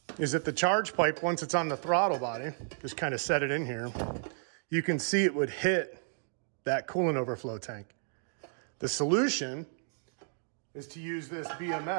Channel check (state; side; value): silent; left; 56 dB below the other